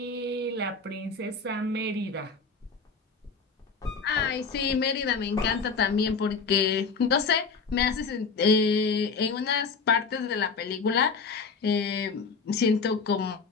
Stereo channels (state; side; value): quieter; right; 4.9 dB